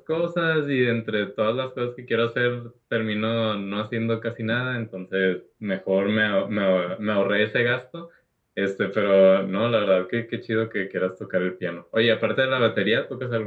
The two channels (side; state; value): both; identical; correlation 1.00